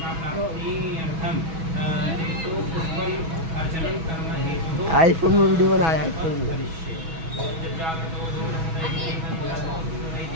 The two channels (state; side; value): late; left; 6.1 ms